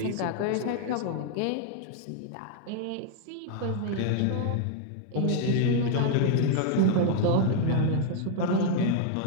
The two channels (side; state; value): both; different; correlation 0.00